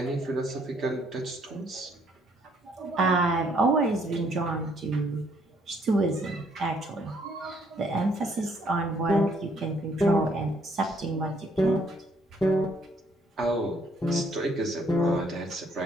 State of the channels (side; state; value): both; normal; correlation 0.66